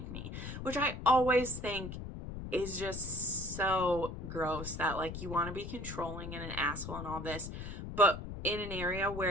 me, which I always think is just so gross, that like you want to be controlling and an asshole and all this, but in an area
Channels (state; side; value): noise; left; rumble, 8 dB below the sound